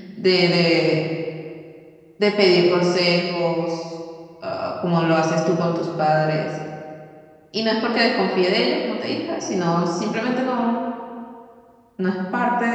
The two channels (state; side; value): identical; both; correlation 1.00